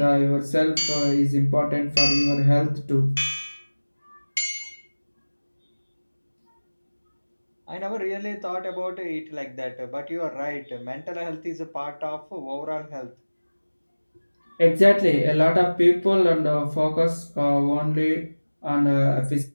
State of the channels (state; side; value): inverted; both; correlation -1.00